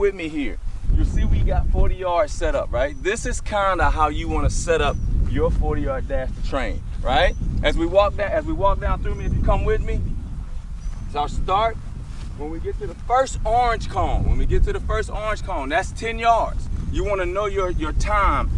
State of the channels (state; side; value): identical; both; correlation 1.00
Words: me here, you see we got 40 yards set up, right? This is kinda how you wanna set up your 40-yard dash to train, right? As we walk down through me, if you come with me, so I'll start. When we get to the first orange cone, that's 10 yards. You want to know your time